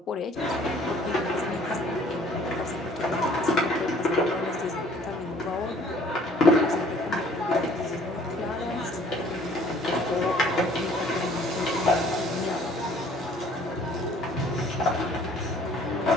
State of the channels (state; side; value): normal; both; correlation 0.56